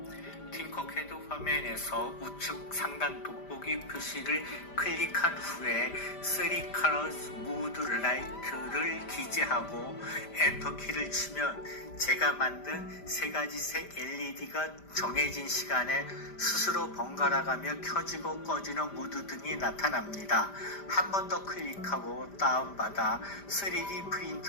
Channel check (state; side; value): late; right; 5.0 ms